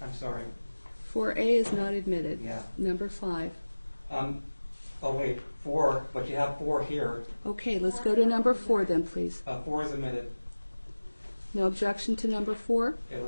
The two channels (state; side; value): inverted; both; correlation -1.00